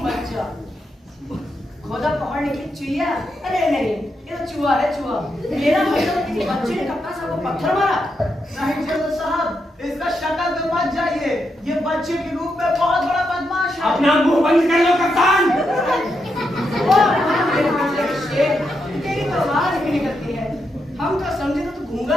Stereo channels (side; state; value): both; normal; correlation 0.83